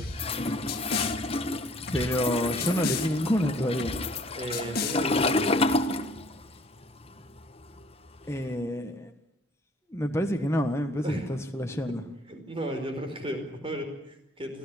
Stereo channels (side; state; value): both; normal; correlation 0.56